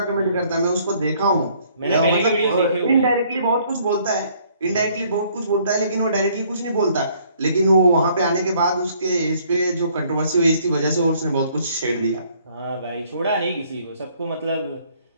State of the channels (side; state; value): both; inverted; correlation -0.63